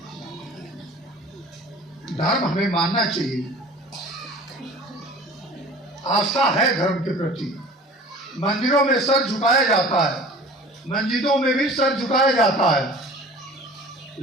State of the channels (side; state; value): both; normal; correlation 0.43